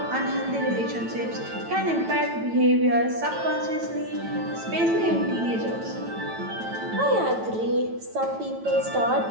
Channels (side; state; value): left; late; 9.1 ms